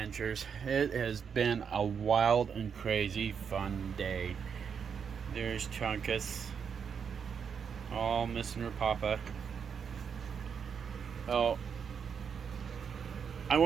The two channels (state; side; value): quieter; left; 6.8 dB